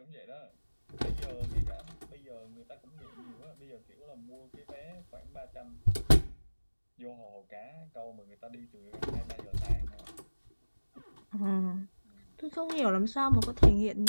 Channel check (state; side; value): inverted; both; correlation -1.00